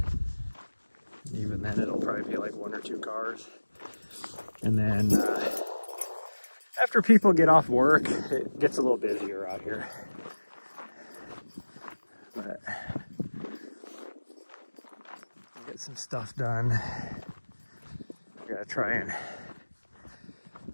Even then, it'll probably be like 1 or 2 cars. And then after people get off work, it gets a little busier out here. But get some stuff done. I gotta try and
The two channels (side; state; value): both; inverted; correlation -1.00